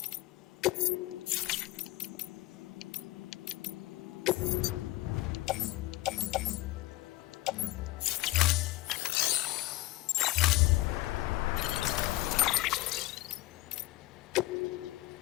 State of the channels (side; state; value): right; quieter; 18.4 dB